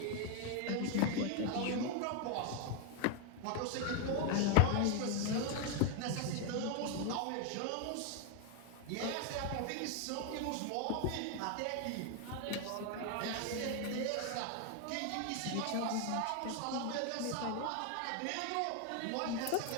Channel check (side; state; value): both; different; correlation 0.01